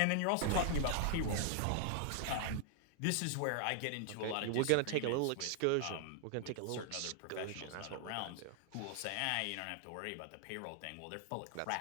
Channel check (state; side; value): different; both; correlation 0.00